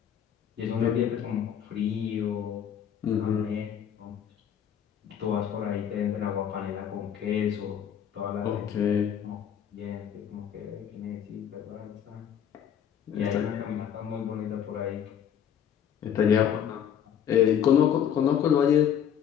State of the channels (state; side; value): quieter; right; 9.0 dB